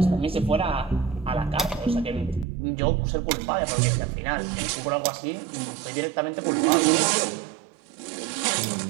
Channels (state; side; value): drops out; left; at 2.5 s